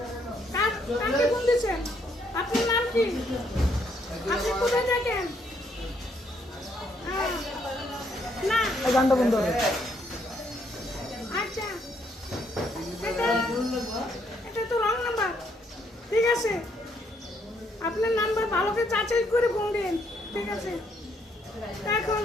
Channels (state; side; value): normal; both; correlation 0.71